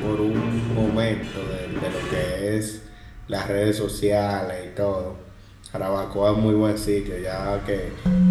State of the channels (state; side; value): identical; both; correlation 1.00